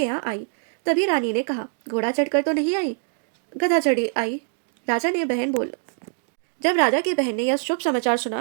यहाँ आई। तभी रानी ने कहा, घोड़ा चढ़कर तो नहीं आई, गधा चढ़ी आई। राजा ने बहन बोल जब राजा की बहन ने यह शुभ समाचार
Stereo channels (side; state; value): left; silent; 61 dB below the other